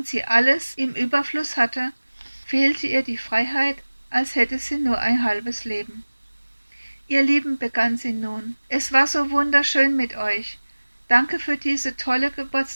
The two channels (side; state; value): both; inverted; correlation -1.00